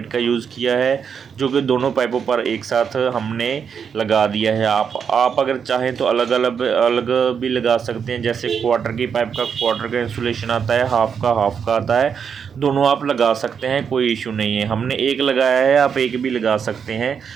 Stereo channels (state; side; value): quieter; left; 6.9 dB